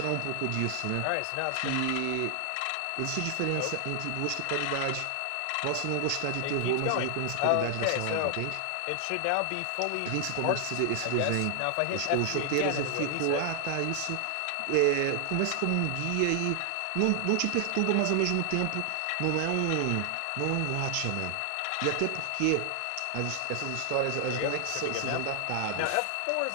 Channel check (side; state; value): both; different; correlation 0.00